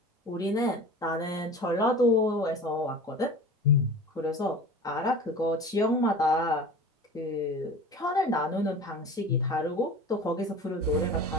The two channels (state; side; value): normal; both; correlation 0.37